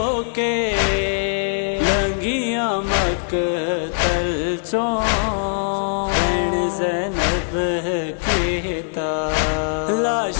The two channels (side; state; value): right; silent; digital silence